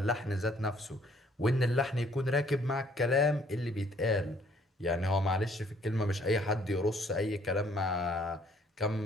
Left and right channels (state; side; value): normal; both; correlation 0.62